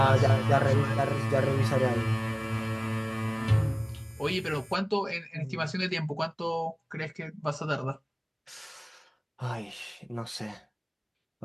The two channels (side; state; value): both; identical; correlation 1.00